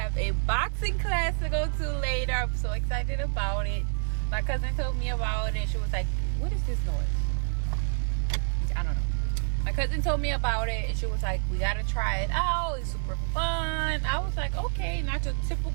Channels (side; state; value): left; silent; digital silence